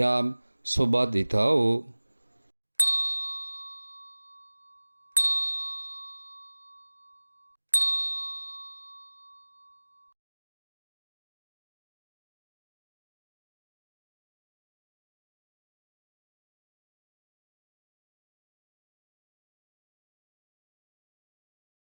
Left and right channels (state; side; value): inverted; both; correlation -1.00